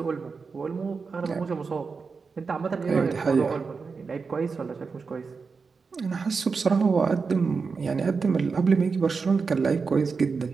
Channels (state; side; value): quieter; left; 4.9 dB